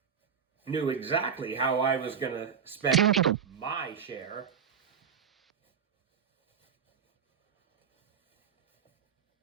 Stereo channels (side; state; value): left; quieter; 7.1 dB